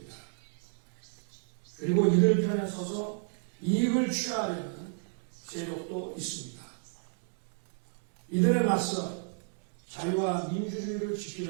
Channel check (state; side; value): silent; left; 56 dB below the other